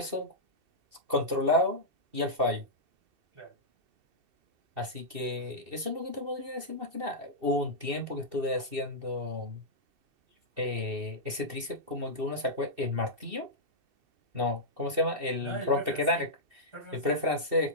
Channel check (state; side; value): late; left; 2.7 ms